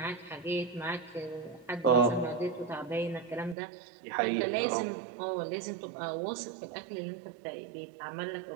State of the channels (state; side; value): drops out; left; at 3.6 s